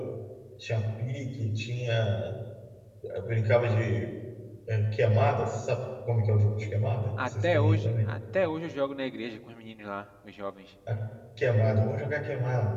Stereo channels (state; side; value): identical; both; correlation 1.00